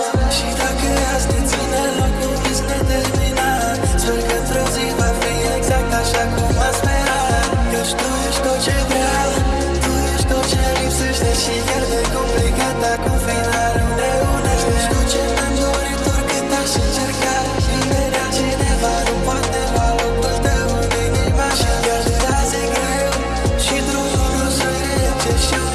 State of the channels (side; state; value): both; identical; correlation 1.00